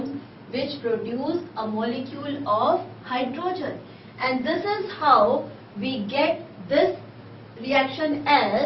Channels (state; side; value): identical; both; correlation 1.00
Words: which produce a molecule of hydrogen. And this is how we get this reaction